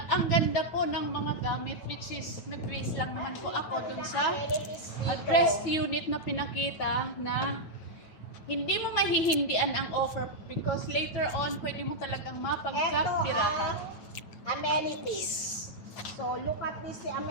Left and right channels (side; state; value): right; late; 9.1 ms